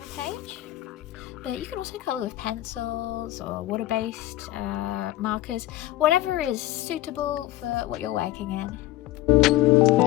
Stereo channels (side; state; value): right; quieter; 15.9 dB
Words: page. But you can also colour with pencils or water-based markers, whatever is suitable for what you're working in.